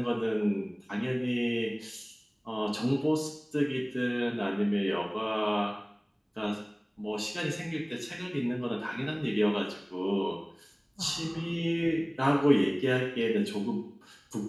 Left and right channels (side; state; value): both; identical; correlation 1.00